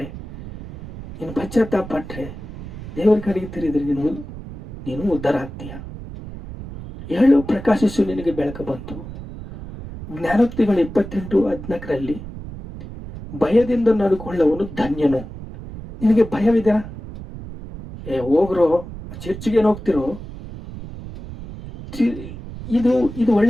ನೀನು ಪಶ್ಚಾತ್ತಾಪಟ್ರೆ, ದೇವರ ಕಡೆಗೆ ತಿರುಗಿದರೆ ನೀನು ಉದ್ಧಾರ ಆಗ್ತೀಯ. ಏಳು ಪ್ರಕಾಶಿಸು, ನಿನಗೆ ಬೆಳಕು ಬಂತು. ಜ್ಞಾನೋಕ್ತಿಗಳು 28:14 ಭಯದಿಂದ ನಡ್ಕೊಳ್ಳುವವನು ಧನ್ಯನು. ನಿನಗೆ ಭಯವಿದೆ? ಹೋಗ್ರೋ, ಚರ್ಚಿಗೆ ಹೋಗ್ತಿರೋ, ಇದು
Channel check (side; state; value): right; noise; rumble, 12 dB below the sound